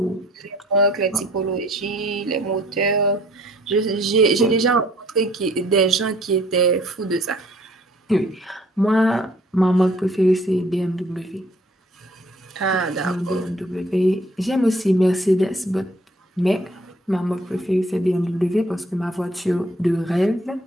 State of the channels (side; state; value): both; normal; correlation 0.58